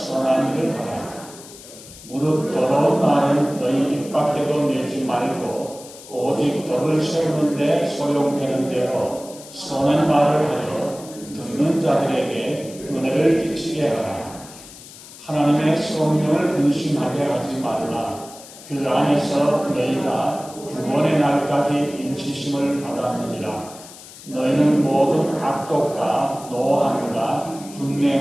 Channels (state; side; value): noise; left; hiss, 18 dB below the sound